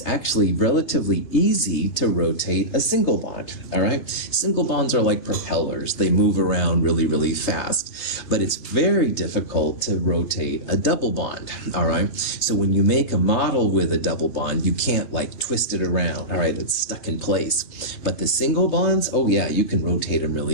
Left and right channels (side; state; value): right; late; 3.3 ms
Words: actually relatively easy to rotate a single bond, all right? Single bonds are like propellers. They move around really, really fast, but it's very difficult to rotate a double bond, all right? So when you make a model with a double bond, you can't like twist it around, all right? It's stuck in place. But the single bonds, oh yeah, you can rotate them